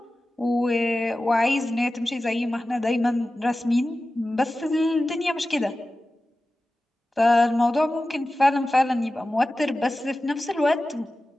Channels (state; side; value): normal; both; correlation 0.95